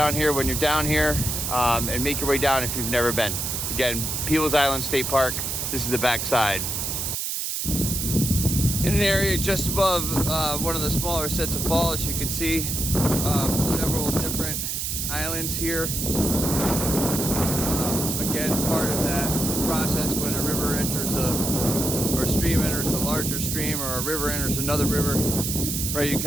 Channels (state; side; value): noise; right; hiss, 2 dB below the sound